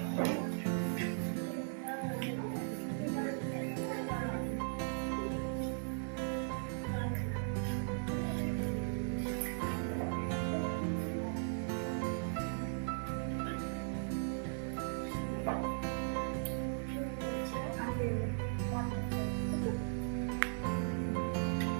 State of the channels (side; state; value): left; silent; 52 dB below the other